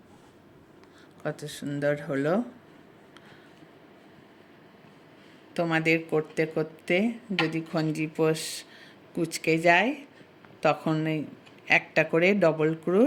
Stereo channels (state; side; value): identical; both; correlation 1.00